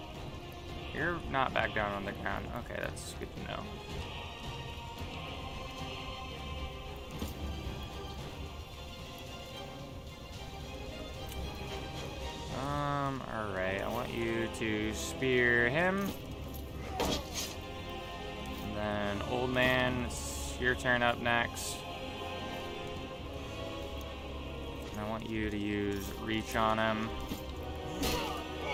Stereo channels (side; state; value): both; identical; correlation 1.00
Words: You're not back down on the ground. Okay, that's good to know. Alright, I want you to spear him. And then, old man, it's your turn up next. And I want you to use reach on him.